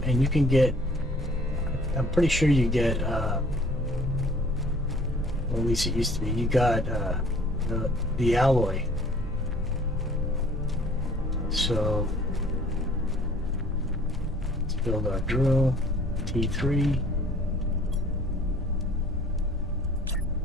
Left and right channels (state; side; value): normal; both; correlation 0.54